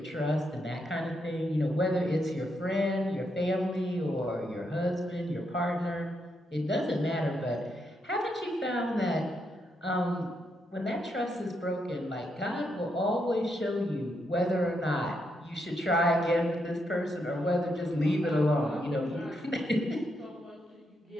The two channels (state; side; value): normal; both; correlation 0.80